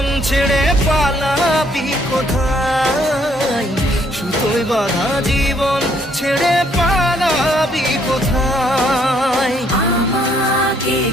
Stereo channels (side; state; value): both; normal; correlation 0.67